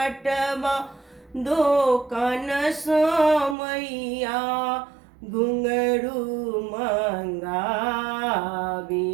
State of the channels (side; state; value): left; drops out; at 3.6 s